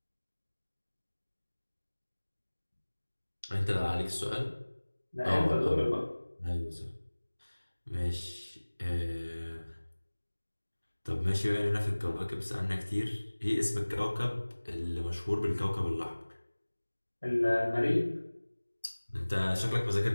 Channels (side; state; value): both; inverted; correlation -1.00